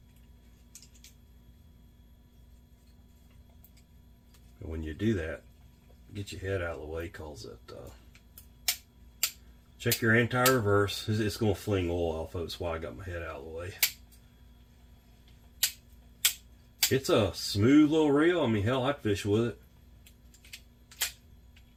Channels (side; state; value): both; identical; correlation 1.00